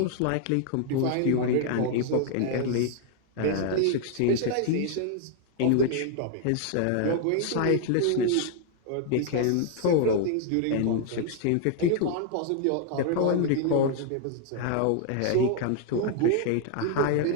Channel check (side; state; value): both; different; correlation 0.00